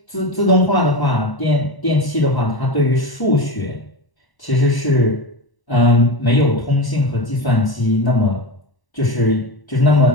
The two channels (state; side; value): late; right; 1.1 ms